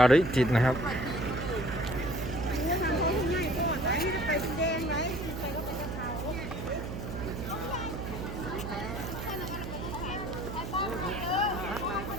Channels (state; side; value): noise; right; hum, 6 dB below the sound